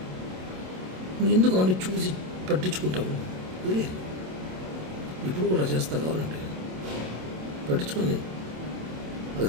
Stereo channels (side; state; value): left; late; 27 ms